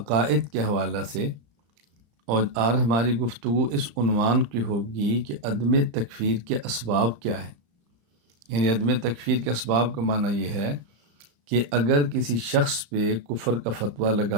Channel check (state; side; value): late; left; 34 ms